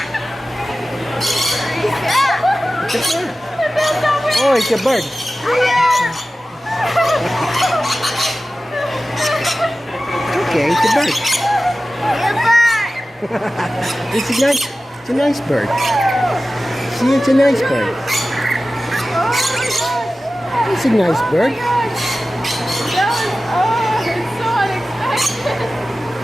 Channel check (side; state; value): both; normal; correlation 0.95